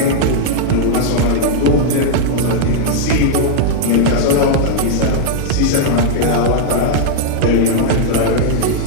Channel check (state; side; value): different; both; correlation -0.01